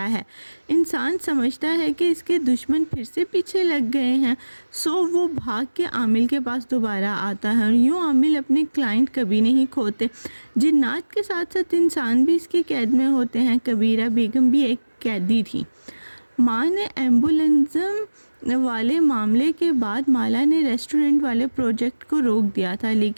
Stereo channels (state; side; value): inverted; both; correlation -1.00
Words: ہے۔ انسان سمجھتا ہے کہ اس کے دشمن پھر سے پیچھے لگ گئے ہیں، سو وہ بھاگ کے عامل کے پاس دوبارہ آتا ہے، اور یوں عامل اپنے کلائنٹ کبھی نہیں کھوتے۔ جنات کے ساتھ ساتھ انسان بھی اس کی قید میں ہوتے ہیں۔ کبیرہ بیگم بھی ایک قیدی تھی۔ ماں نے ایمبولینزم والے معاملے کے بعد مالا نے ریسٹورنٹ والے پروجیکٹ کو روک دیا تھا،